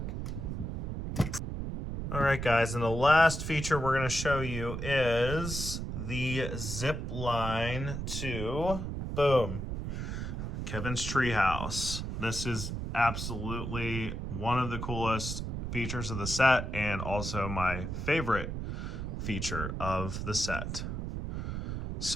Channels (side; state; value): right; noise; rumble, 4 dB below the sound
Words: All right, guys, and the last feature we're going to show you is the zip line to, boom, Kevin's treehouse. This is absolutely one of the coolest features of the set and also my favorite feature of the set.